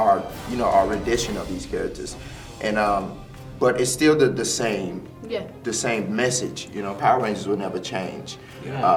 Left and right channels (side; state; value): both; identical; correlation 1.00